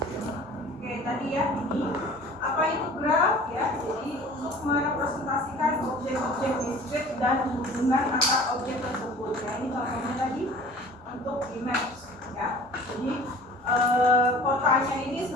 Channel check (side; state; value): both; normal; correlation 0.45